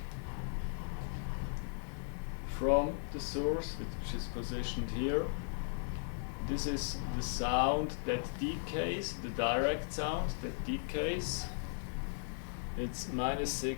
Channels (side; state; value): right; silent; digital silence